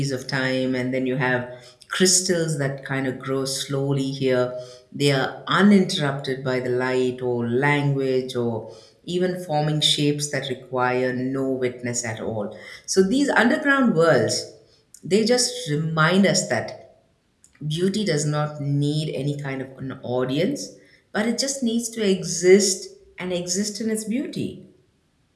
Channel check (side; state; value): both; identical; correlation 1.00